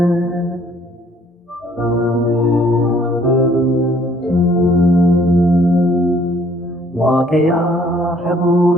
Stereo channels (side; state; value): both; normal; correlation 0.61